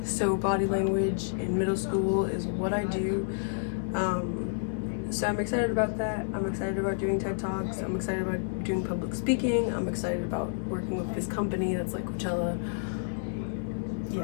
So body language in middle school is what I do. So I'm excited about that. I'm excited about doing TED Talks. I'm excited about doing public speaking. I'm excited about working with this company that's like Coachella.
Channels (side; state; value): right; silent; digital silence